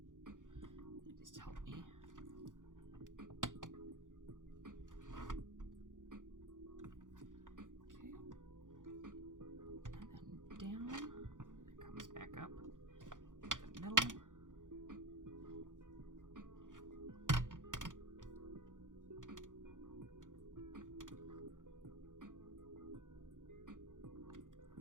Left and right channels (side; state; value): left; late; 0.88 ms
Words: They just help me. Back up the middle.